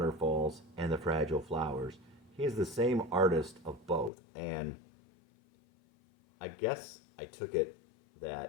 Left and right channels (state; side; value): drops out; right; at 4.1 s